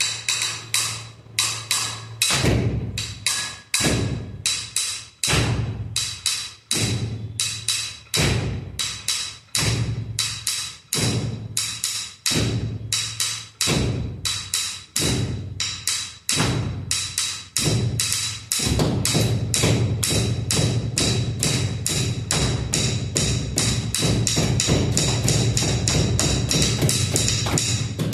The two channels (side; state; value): both; identical; correlation 1.00